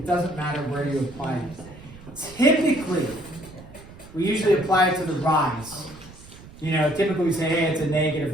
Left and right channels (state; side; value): noise; right; rumble, 19 dB below the sound